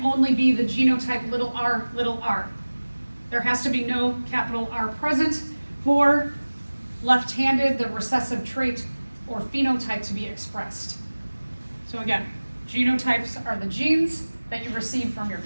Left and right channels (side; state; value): both; inverted; correlation -1.00